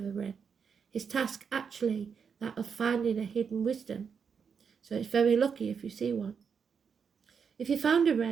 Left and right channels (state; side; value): quieter; left; 6.4 dB